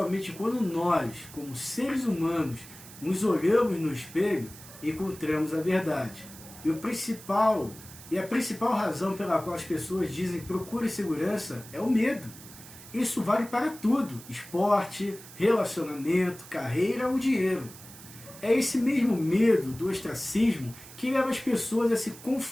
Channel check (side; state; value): right; noise; hiss, 17 dB below the sound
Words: quando nós, como seres humanos, nos olhamos no espelho, encontramos a verdade. E a principal razão pela qual as pessoas dizem procure segurança é o medo. Isso vale para tudo: esporte, relacionamento, carreira ou dinheiro. É esse mesmo medo do ostracismo que leva as pessoas a se